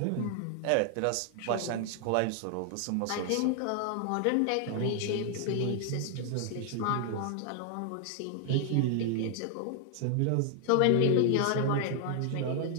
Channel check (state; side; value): different; both; correlation 0.00